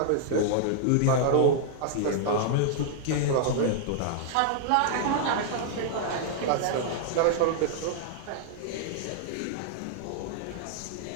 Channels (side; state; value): both; different; correlation -0.01